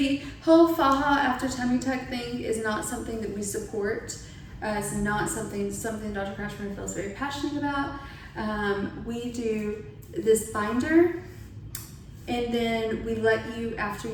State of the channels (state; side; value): identical; both; correlation 1.00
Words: whole faja after tummy tuck thing is not something that we support. It's not something Dr. Kratschmer feels very passionate about. We do this binder, and then we let you, after